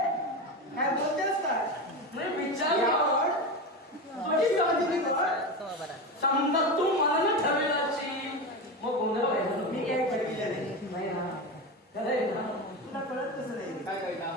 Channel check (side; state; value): both; normal; correlation 0.20